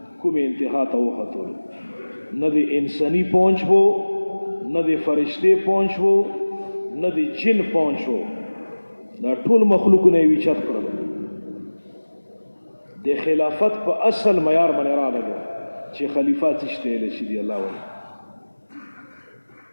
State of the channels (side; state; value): both; inverted; correlation -1.00